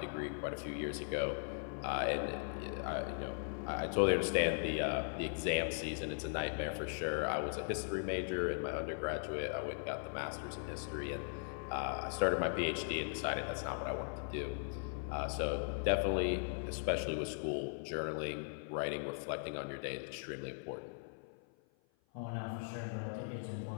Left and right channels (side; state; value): right; silent; 52 dB below the other